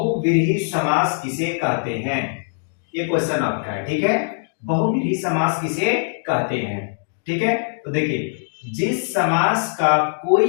समास किसे कहते हैं, ये क्वेश्चन आपका है। ठीक है, बहुव्रीहि समास किसे कहते हैं। ठीक है, तो देखिए, जिस समास का कोई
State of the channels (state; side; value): silent; right; digital silence